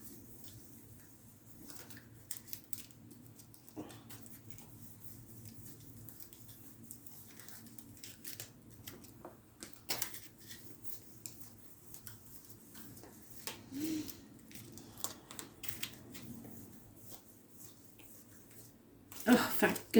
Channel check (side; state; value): both; identical; correlation 1.00